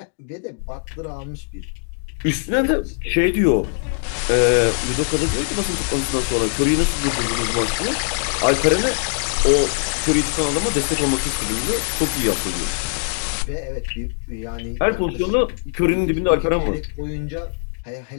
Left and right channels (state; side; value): silent; right; digital silence